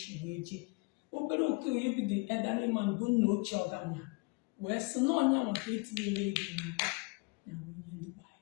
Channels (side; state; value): right; quieter; 28.3 dB